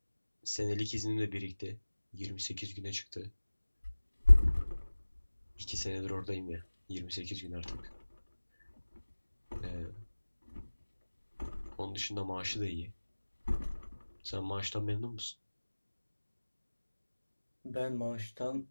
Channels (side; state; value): both; inverted; correlation -1.00